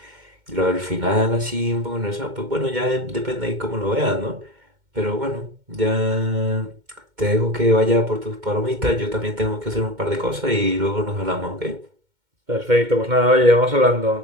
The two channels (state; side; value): late; left; 2.2 ms